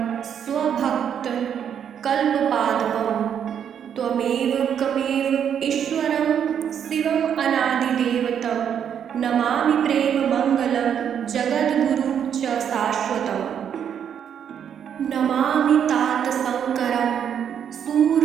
स्वभक्त कल्पपादपं त्वमेव कमेव ईश्वरं शिवम् अनादिदेवतं नमामि प्रेममङ्गलं जगद्गुरुं च शाश्वतम् नमामि तात शङ्करं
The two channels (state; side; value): quieter; left; 8.5 dB